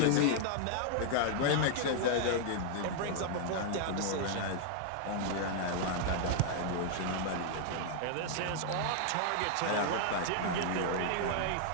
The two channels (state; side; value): different; both; correlation 0.00